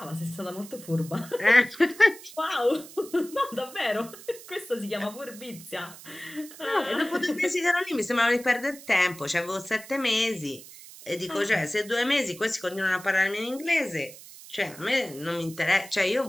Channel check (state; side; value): noise; right; hiss, 17 dB below the sound